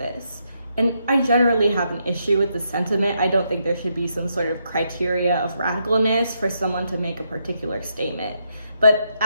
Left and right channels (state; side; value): inverted; both; correlation -0.79